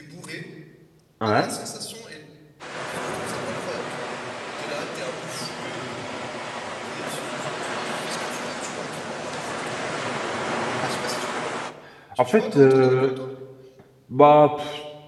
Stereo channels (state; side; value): identical; both; correlation 1.00